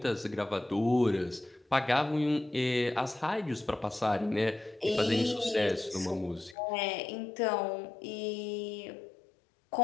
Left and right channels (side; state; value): right; drops out; at 6.6 s